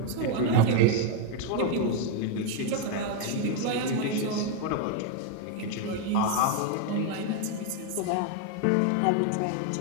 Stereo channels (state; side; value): different; both; correlation 0.01